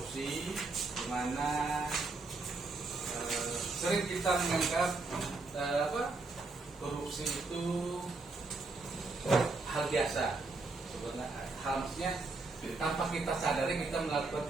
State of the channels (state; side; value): quieter; left; 3.6 dB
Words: di mana sering kita menganggap korupsi itu hal biasa. Sebenarnya harusnya tanpa kita sadari kita melakukan